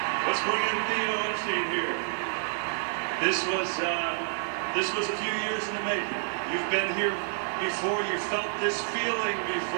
Let's bring in Theo Epstein here. This was a few years in the making. You've been here before. You felt this feeling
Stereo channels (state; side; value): silent; left; digital silence